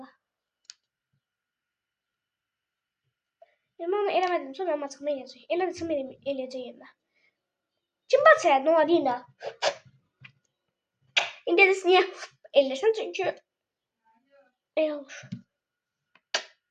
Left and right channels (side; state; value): both; identical; correlation 1.00